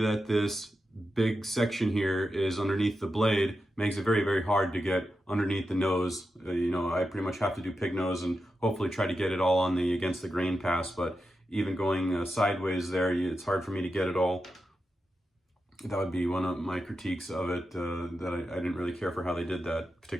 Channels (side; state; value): both; normal; correlation 0.89